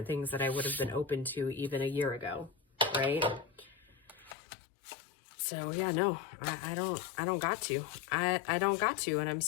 things that I would have been open to even a year ago, right? So yeah, no, I don't got to. I don't got to, and I'm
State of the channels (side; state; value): right; drops out; at 4.4 s